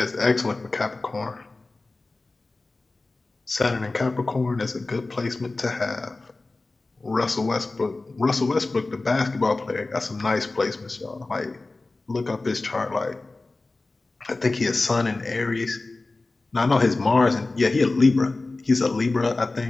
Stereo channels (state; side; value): quieter; right; 3.3 dB